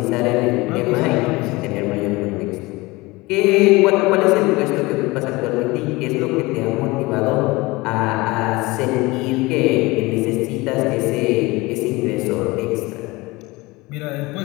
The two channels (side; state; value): right; quieter; 22.4 dB